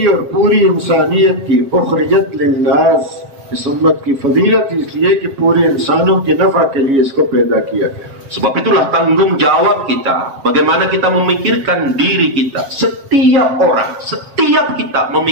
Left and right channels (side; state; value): left; late; 7.3 ms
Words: और पूरी इंसानियत की उखरिजत लिन्नास. इस उम्मत की फजीलत इसलिए कि पूरे इंसानों के नफा के लिए इसको पैदा किया गया. Sebab itulah tanggung jawab kita, bagaimana kita memikirkan diri kita. Setiap orang, setiap kita